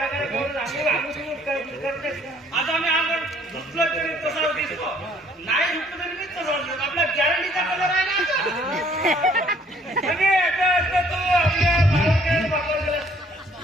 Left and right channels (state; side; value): normal; both; correlation 0.61